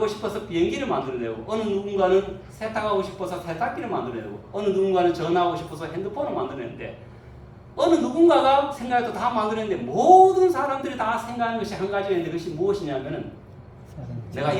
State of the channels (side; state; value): both; identical; correlation 1.00